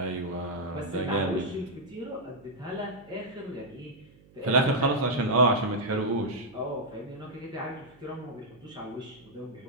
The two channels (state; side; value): noise; right; hum, 26 dB below the sound